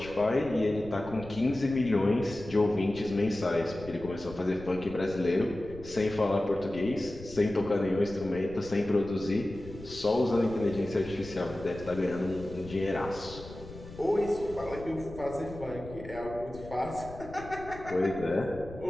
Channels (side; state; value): left; noise; rumble, 15 dB below the sound